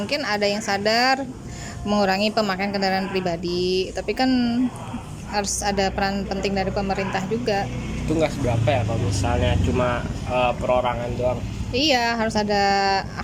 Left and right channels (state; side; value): identical; both; correlation 1.00